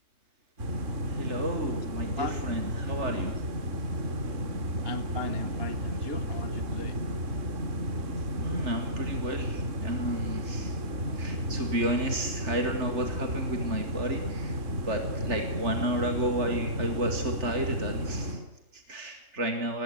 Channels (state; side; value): late; left; 3.4 ms